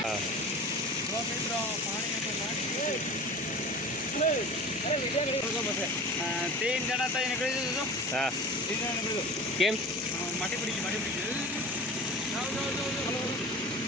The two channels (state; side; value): normal; both; correlation 0.36